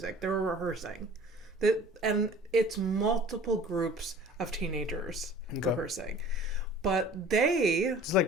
They were rehearsing, and it's multiple groups of teenagers rehearsing, but It's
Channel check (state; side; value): normal; both; correlation 0.47